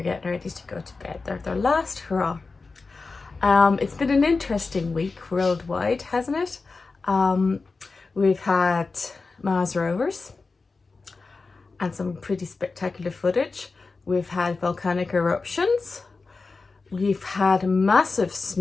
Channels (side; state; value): right; quieter; 4.1 dB